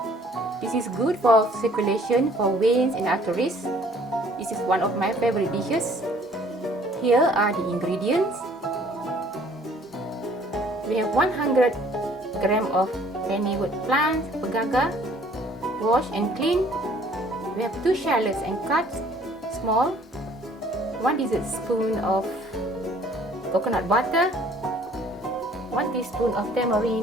This is good for circulation, for veins and arteries. This is one of my favorite dishes. Here are the ingredients. We have 100 grams of Pennywort plant, Pegaga, washed and cleaned. We have 2 shallots and cut small. 1 tablespoon of coconut butter, 1 teaspoon of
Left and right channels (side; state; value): both; normal; correlation 0.57